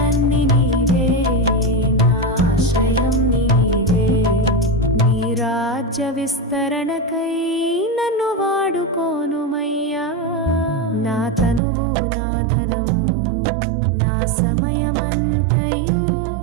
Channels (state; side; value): drops out; left; at 11.6 s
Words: నీవే, నా ఆశ్రయం నీవే. నీ రాజ్య విస్తరణకై నన్ను వాడుకోనుమయ్యా. నా తనువు నా ధనము నా సమయమంతయు